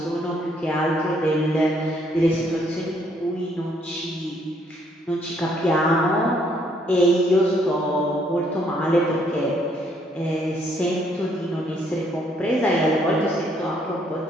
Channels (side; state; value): both; normal; correlation 0.68